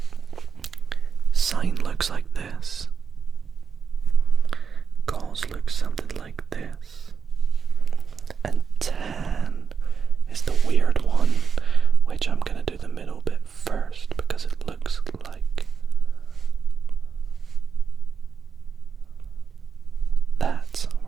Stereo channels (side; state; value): left; quieter; 6.4 dB